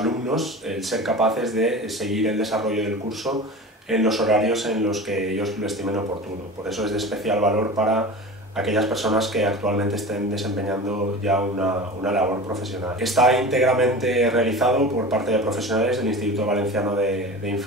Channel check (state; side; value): normal; both; correlation 0.33